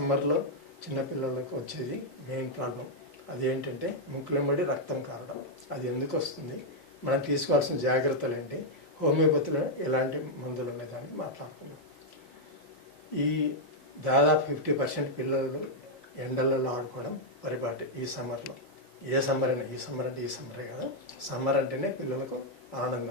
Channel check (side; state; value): both; normal; correlation -0.03